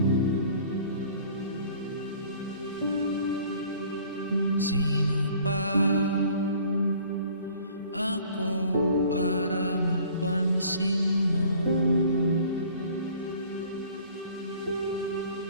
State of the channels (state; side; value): inverted; both; correlation -0.52